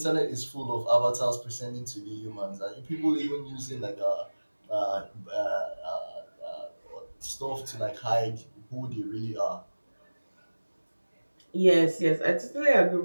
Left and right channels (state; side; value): inverted; both; correlation -1.00